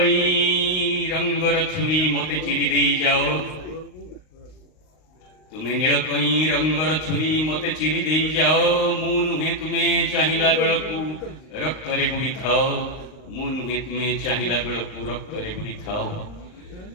रंगर छुरी मते चिरी दे जाओ तुम्हें नील कई रंगर छुरी मते चिरी दे जाओ मु नुहे तुम्हें चाहिला बेलकू रक्त रे बुड़ी थाओ मु नुहे तुम्हें चाहिला बेलकू रक्त रे बुड़ी थाओ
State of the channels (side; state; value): right; late; 38 ms